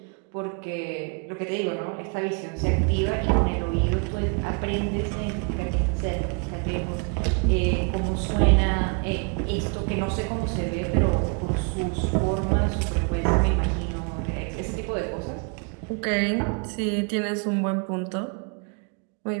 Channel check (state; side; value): quieter; left; 36.3 dB